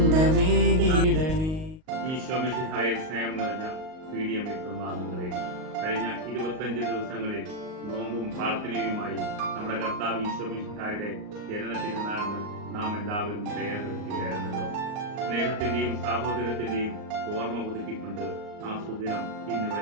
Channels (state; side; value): late; left; 38 ms